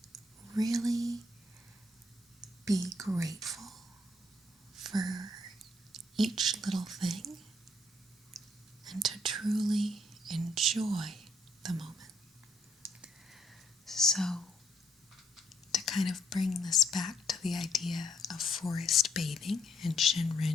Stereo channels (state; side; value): normal; both; correlation 0.71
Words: really be grateful for each little thing and to truly enjoy the moment. So to kind of bring this back to the idea of forest bathing and